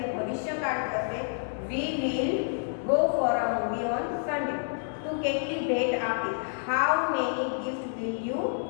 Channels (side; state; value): right; silent; 59 dB below the other